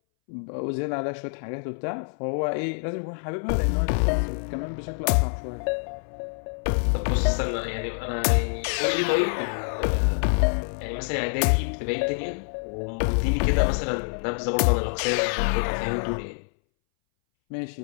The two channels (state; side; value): silent; right; 61 dB below the other